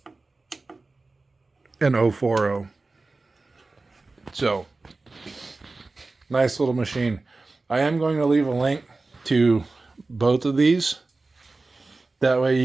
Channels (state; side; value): quieter; left; 3.5 dB